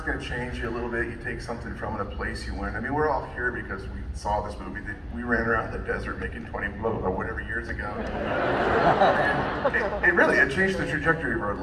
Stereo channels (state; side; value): identical; both; correlation 1.00